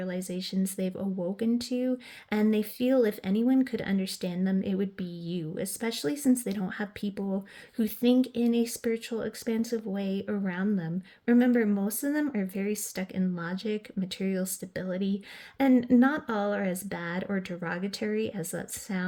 they've awoken to, and they feel if anyone could understand them, it would be you, especially since they don't have people who think in a spiritual, expansive way around them. Remember, most of them are very stuck in logic, material stability, and not all are as bad or derogatory as that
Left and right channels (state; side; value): identical; both; correlation 1.00